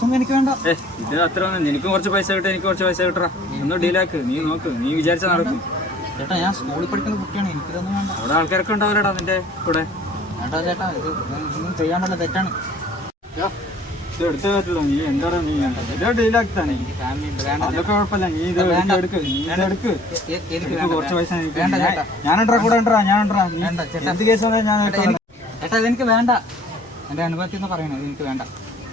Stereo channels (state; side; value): normal; both; correlation 0.53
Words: എനിക്ക് വേണ്ട. ഇത് അത്ര ഒന്നും, എനിക്കും കുറച്ച് പൈസ കിട്ടും, എനിക്ക് കുറച്ച് പൈസ കിട്ടറാ. ഒന്ന് ഡീലാക്ക്, നീ നോക്ക്, നീ വിചാരിച്ചാൽ നടക്കും. ചേട്ടാ ഞാൻ സ്കൂളിൽ പഠിക്കുന്ന കുട്ടിയാണ്, എനിക്കിതൊന്നും വേണ്ട. അവിടെ ആൾക്കാരൊക്കെ ഉണ്ടാവില്ലടാ നിന്റെ കൂടെ. ചേട്ടാ ചേട്ടാ ഇതൊന്നും ചെയ്യാൻ പറ്റില്ല, തെറ്റാണ്. ഇത് എടുത്തേ പറ്റുള്ളൂ. നീ എന്താണ് നീ ഇതോ ഡീലാക്കി തന്നെ. അതൊക്കെ കുഴപ്പമില്ല, നീ ഇത് എടുക്ക്, നീ ഇതെടുക്ക്. എനിക്ക് കുറച്ച് പൈസ ഞാനുണ്ടാ കൂടെ ഉണ്ടാ, ഞാനുണ്ടാ. എന്ത് കേസ് വന്നാൽ ഞാൻ ചേട്ടാ ഇതെനിക്ക് വേണ്ട. എൻ്റെ അനുഭവത്തിൽ നിന്ന് പറയണേ, ഇതെനിക്ക് വേണ്ട.